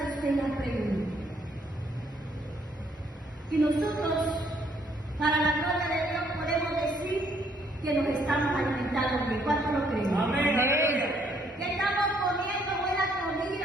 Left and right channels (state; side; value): normal; both; correlation 0.68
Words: usted la pregunta. Y nosotros, para la gloria de Dios, podemos decir que nos estamos alimentando bien. ¿Cuánto lo creen? Amén. Aleluya. Que estamos comiendo buena